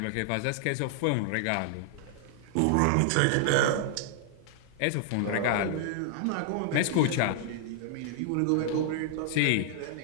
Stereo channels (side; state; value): both; different; correlation -0.01